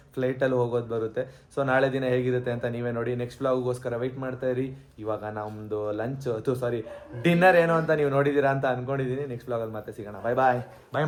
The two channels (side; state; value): both; identical; correlation 1.00